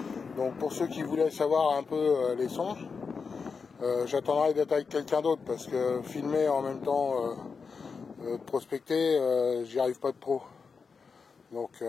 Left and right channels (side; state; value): right; quieter; 5.2 dB